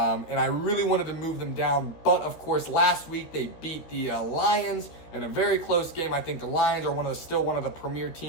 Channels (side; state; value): right; late; 13 ms